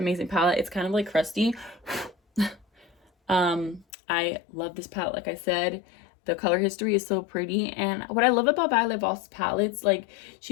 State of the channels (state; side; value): drops out; right; at 3.9 s